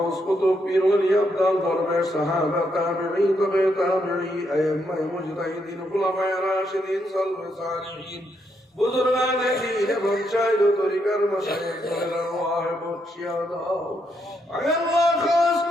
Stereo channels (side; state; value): both; normal; correlation 0.78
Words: কুতুব পীর ওলি আবদাল দরবেশ সাহাবা তাবেঈন তবে তাবেঈ আইম্মা মুজতাহিদিন খুলাফায়ে রাশিদিন সালফে সালিহিন বুজুর্গানে দ্বীন এবং শায়খ তরিকার মাশায়েখদের আরওয়াহ বখশিয়া দাও আল্লাহ খাস